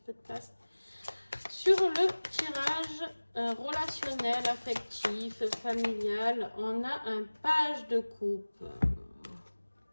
de place. Sur le tirage relationnel, affectif, familial, on a un page de coupe.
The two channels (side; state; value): both; inverted; correlation -1.00